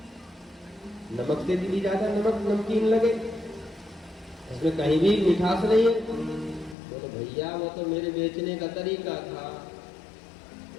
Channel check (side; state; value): right; drops out; at 6.8 s